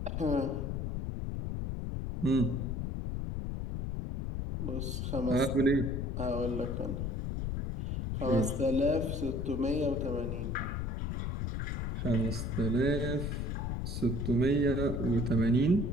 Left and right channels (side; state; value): left; noise; rumble, 2 dB below the sound